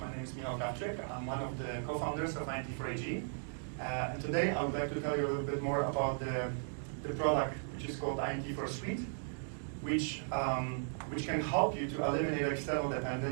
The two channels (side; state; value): left; silent; digital silence